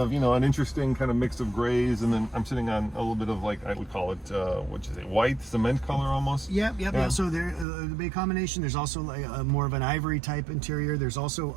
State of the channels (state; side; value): drops out; left; at 7.7 s